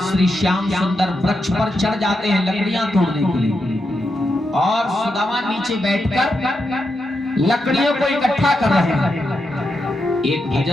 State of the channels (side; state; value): both; normal; correlation 0.85